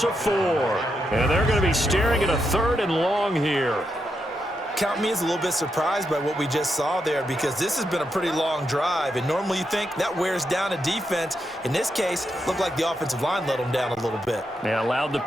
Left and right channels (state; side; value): normal; both; correlation 0.83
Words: of 4, and they're going to be staring at a 3rd and long here. Count me as a little bit surprised by what we just saw there, because this has been a pretty long drive, and normally you think that wears down a defense. In this case, looked like the offensive line let them down a little bit. They allowed the